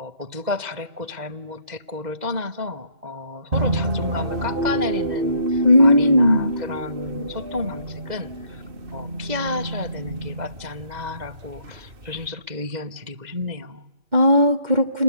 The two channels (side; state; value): left; late; 2.0 ms